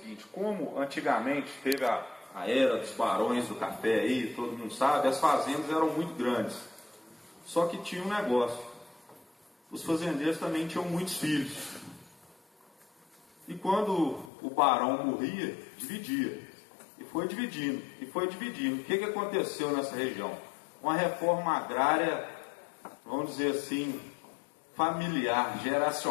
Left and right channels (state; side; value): drops out; right; at 14.3 s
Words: como antigamente teve a era dos barões do café aí, todo mundo sabe, as fazendas eram muito grandes. Só que tinha um negócio: os fazendeiros também tinham muitos filhos. E quando o barão morria, dividia. E foi dividindo, e foi dividindo. O que aconteceu nessa região? Uma reforma agrária, vamos dizer assim, familiar,